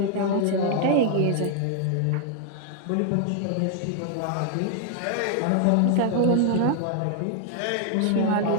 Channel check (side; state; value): both; different; correlation 0.00